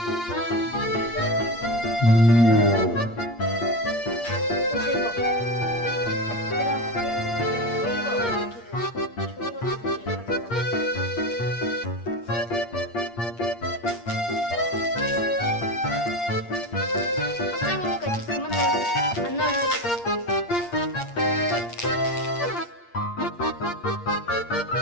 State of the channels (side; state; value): right; late; 8.6 ms